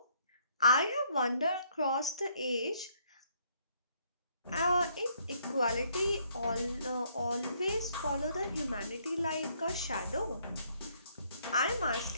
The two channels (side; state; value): both; inverted; correlation -0.68